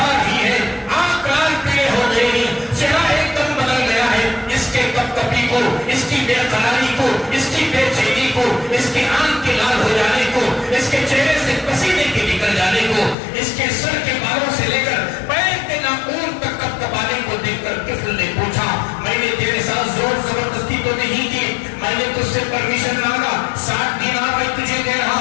پوچھا میں نے تیرے ساتھ زور زبردستی تو نہیں کی, میں نے تجھ سے پرمیشن مانگا, 60 دینار میں تجھے دے رہا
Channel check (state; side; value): drops out; right; at 13.2 s